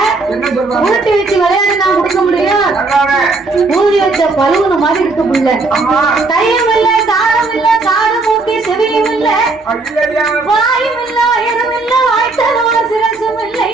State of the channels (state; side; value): quieter; left; 3.6 dB